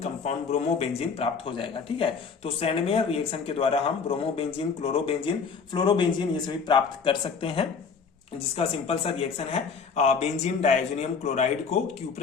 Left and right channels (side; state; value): right; quieter; 5.6 dB